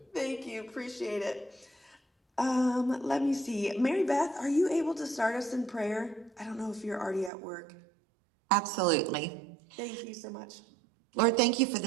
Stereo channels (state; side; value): drops out; left; at 7.3 s